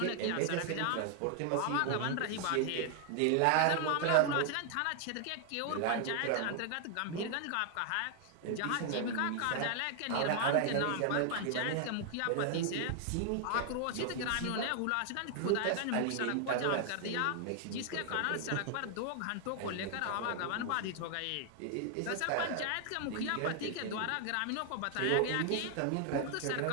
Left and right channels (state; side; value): different; both; correlation 0.00